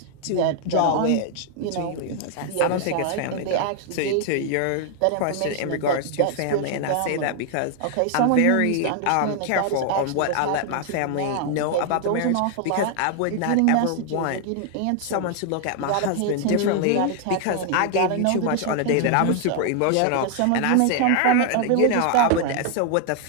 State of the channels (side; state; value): both; different; correlation 0.00